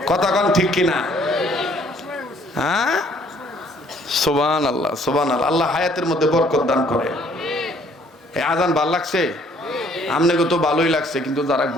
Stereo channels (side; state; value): both; normal; correlation 0.61